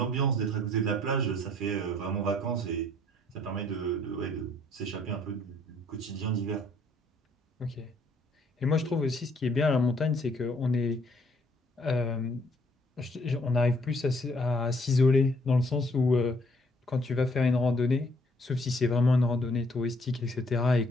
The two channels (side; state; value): both; normal; correlation 0.64